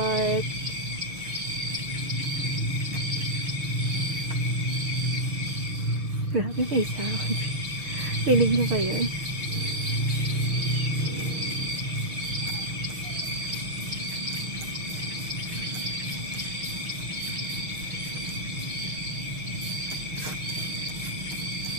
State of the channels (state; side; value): late; left; 6.4 ms